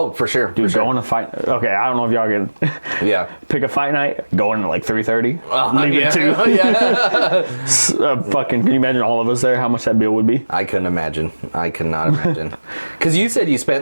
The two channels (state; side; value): inverted; both; correlation -1.00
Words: for sure. Dude, go on a fight. Okay, I don't know if y'all can Yeah. pick a fight night, go in at like 3:30, leave yeah. at 2. Yeah. Fucking, can you imagine all of us there, how much that bill would be? I couldn't imagine. I could not imagine. Because you said you